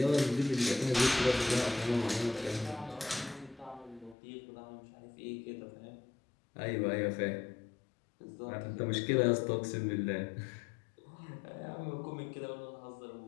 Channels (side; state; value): right; drops out; at 4.2 s